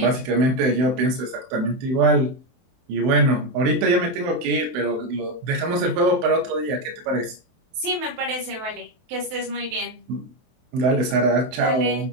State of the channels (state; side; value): late; left; 23 ms